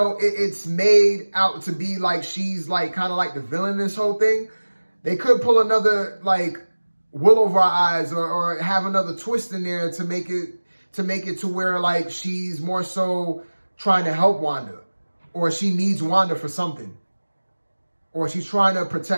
it's made out to be like she's like kind of like the villain in this whole thing, they could pull another like wool over our eyes or have another twist in there to make it to where like she's more so trying to help Wanda, or she needs Wanda for something, or she's trying to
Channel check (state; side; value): inverted; both; correlation -1.00